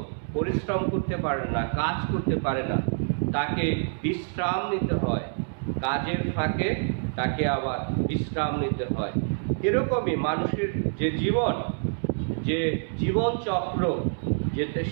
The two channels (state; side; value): silent; left; digital silence